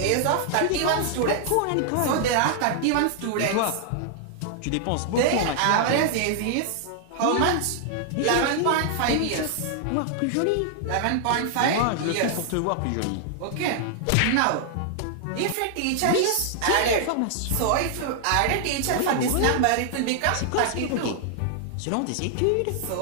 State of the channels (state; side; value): different; both; correlation 0.00